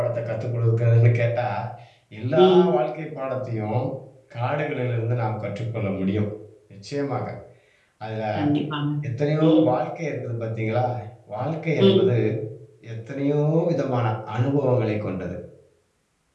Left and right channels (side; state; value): both; identical; correlation 1.00